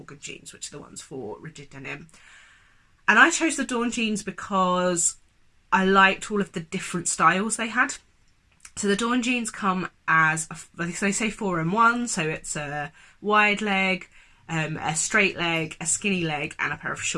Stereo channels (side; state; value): both; identical; correlation 1.00